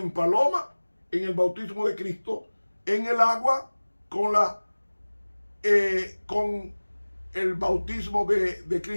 paloma, en el bautismo de Cristo, en el agua, con el bautismo de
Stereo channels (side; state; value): both; inverted; correlation -1.00